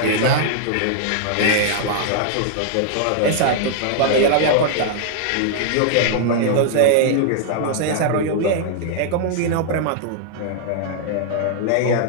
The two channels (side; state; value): both; different; correlation -0.01